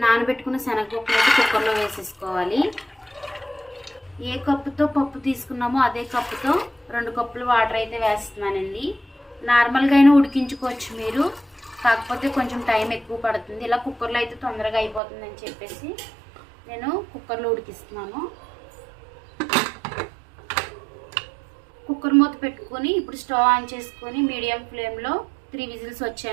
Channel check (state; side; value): drops out; left; at 15.0 s